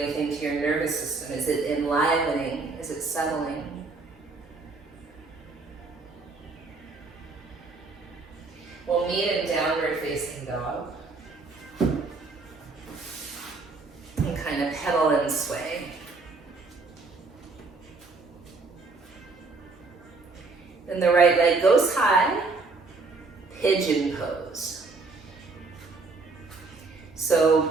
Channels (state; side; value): quieter; left; 3.9 dB